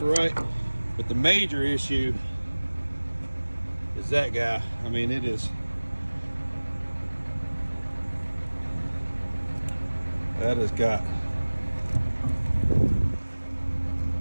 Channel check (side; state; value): both; inverted; correlation -1.00